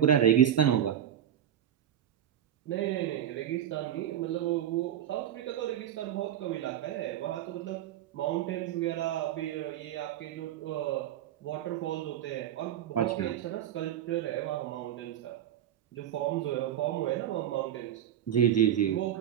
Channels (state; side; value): quieter; left; 10.6 dB